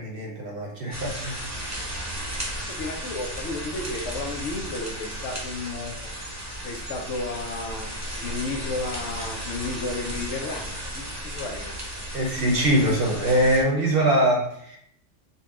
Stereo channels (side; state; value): both; normal; correlation -0.08